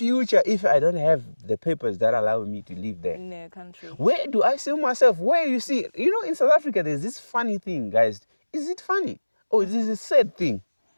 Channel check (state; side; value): inverted; both; correlation -1.00